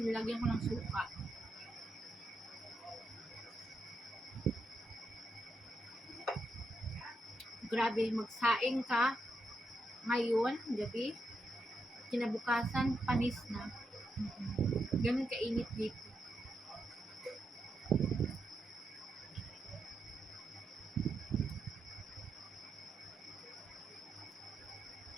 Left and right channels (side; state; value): both; normal; correlation 0.84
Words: nilagyan ko ng suka. Grabe, magsaing ka ngayon, gabi, kinabukasan, panis na. Ganun kainit dito.